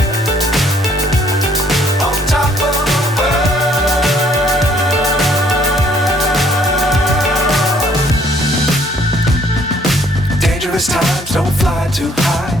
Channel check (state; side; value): normal; both; correlation 0.62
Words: Times don't fly too high.